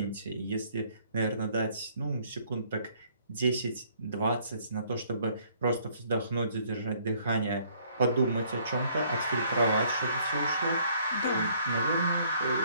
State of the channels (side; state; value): both; inverted; correlation -0.63